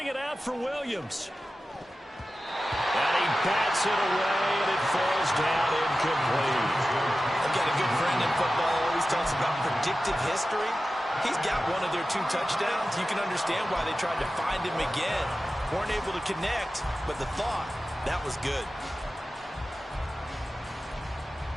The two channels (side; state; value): both; normal; correlation 0.94